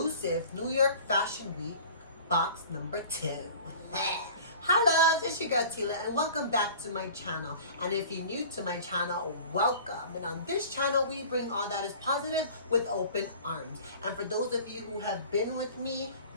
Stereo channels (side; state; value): both; inverted; correlation -0.44